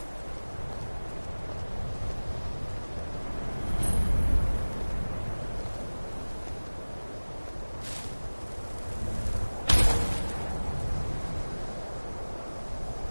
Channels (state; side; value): inverted; both; correlation -1.00